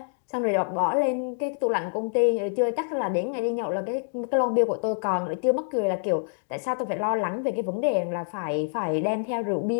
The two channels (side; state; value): right; silent; digital silence